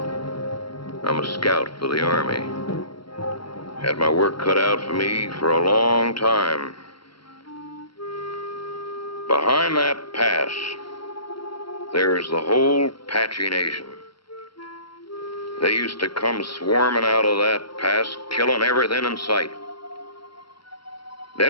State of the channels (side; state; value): right; late; 0.74 ms